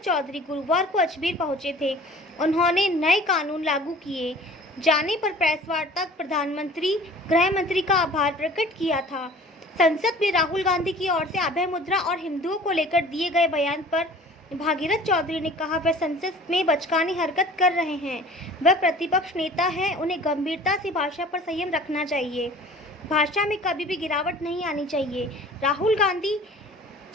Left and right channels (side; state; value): both; normal; correlation 0.46